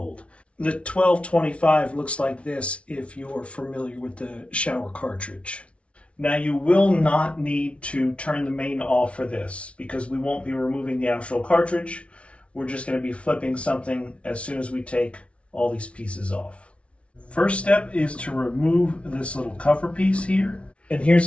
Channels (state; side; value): late; right; 0.061 ms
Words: The 1225 looks like this if you're familiar with the shower cartridge. Now you will not need to turn the main off for this because we won't be removing the actual cartridge. We're just going to be flipping something as soon as we take all these pieces off. First step is to remove this little cover piece here. And